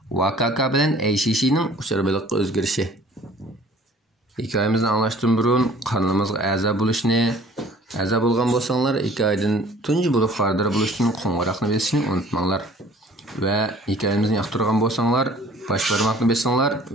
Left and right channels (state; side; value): normal; both; correlation 0.51